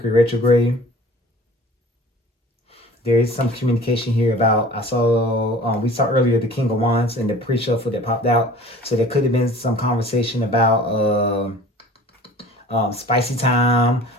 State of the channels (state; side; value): normal; both; correlation 0.45